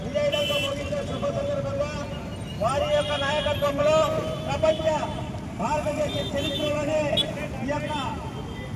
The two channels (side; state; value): both; identical; correlation 1.00